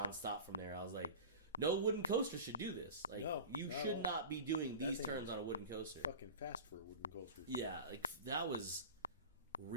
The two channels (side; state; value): both; inverted; correlation -0.34